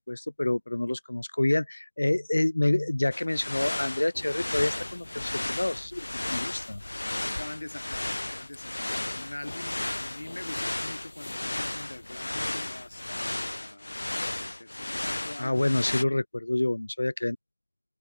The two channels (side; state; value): both; inverted; correlation -1.00